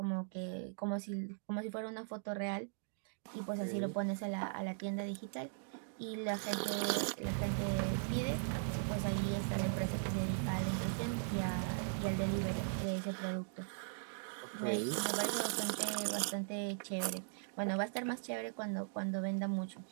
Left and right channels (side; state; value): left; silent; digital silence